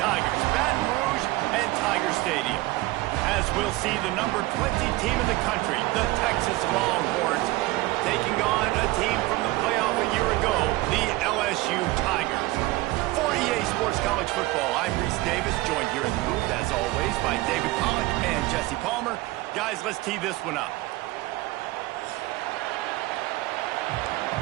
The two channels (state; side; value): quieter; left; 19.4 dB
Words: Baton Rouge and Tiger Stadium. As we'll see the number 20 team in the country, the Texas Longhorns, taking on a team from the playoff a year ago, the LSU Tigers. For EA Sports College Football, I'm Reese Davis, joined here in the booth, as always, by David Pollack and Jesse Palmer. Guys, let's tee this one up.